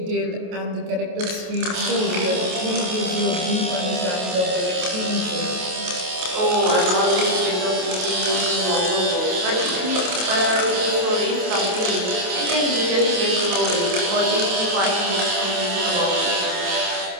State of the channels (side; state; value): left; late; 27 ms